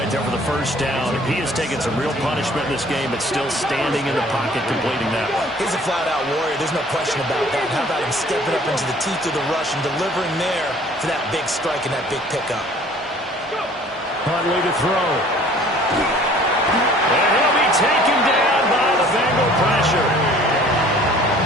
there for the 1st down. He has taken some real punishment in this game, but still standing in the pocket completing that one. He's a flat-out warrior. There's no question about that. How about him stepping up into the teeth of the rush and delivering there for that big strike and that big pickup. Huntley to throw. And he'll be taken down by the Bengal pressure.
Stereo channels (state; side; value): normal; both; correlation 0.53